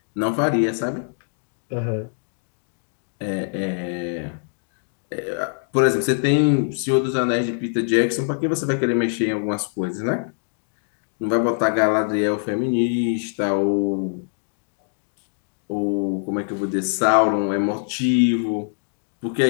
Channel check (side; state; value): right; silent; digital silence